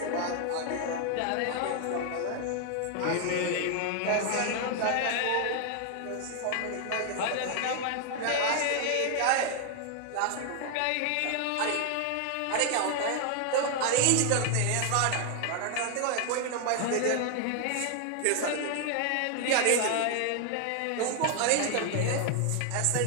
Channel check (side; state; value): both; different; correlation 0.00